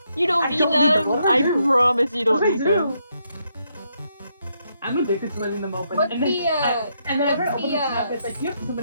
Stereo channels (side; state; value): both; inverted; correlation -0.78